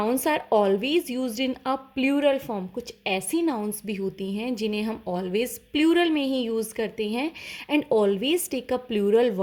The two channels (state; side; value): identical; both; correlation 1.00